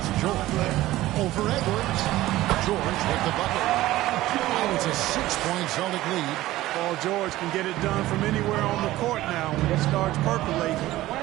George. Over Edwards. George with the bucket. Oh, it's a 6-point Celtic lead. Paul George can get it done from anywhere on the court now. When he starts percolating,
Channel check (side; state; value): left; quieter; 16.3 dB